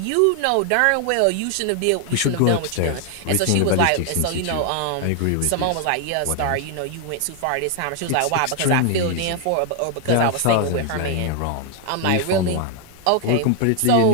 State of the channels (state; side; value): different; both; correlation 0.00